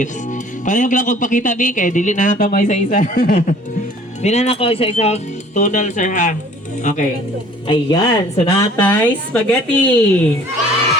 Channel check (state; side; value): normal; both; correlation 0.52